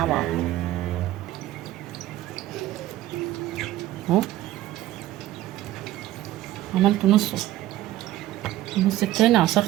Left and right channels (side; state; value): left; quieter; 14.7 dB